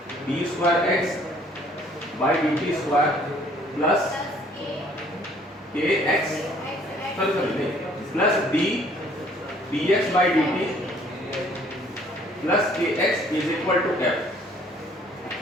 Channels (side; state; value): both; normal; correlation 0.59